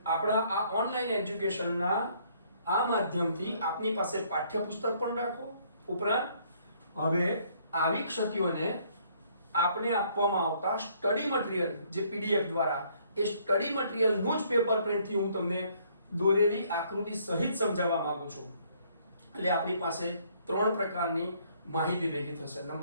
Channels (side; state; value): both; inverted; correlation -0.64